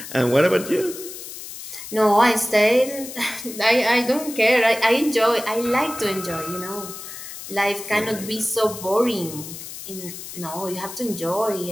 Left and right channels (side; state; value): left; noise; hiss, 11 dB below the sound